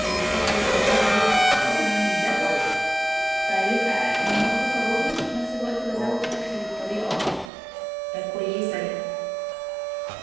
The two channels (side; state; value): left; drops out; at 7.5 s